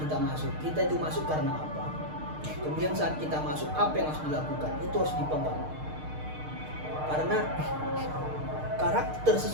masuk. Kita itu masuk karena apa? Kemudian saat kita masuk apa yang harus dilakukan? Itu harus dipegang. Karena karakter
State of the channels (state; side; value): late; left; 6.5 ms